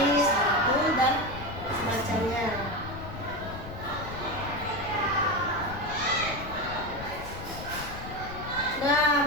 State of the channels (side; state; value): left; noise; rumble, 11 dB below the sound